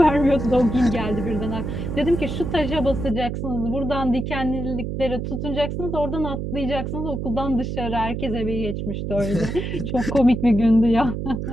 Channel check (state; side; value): noise; right; hum, 4 dB below the sound